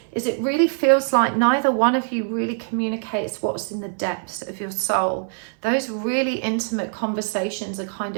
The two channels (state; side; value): silent; left; 58 dB below the other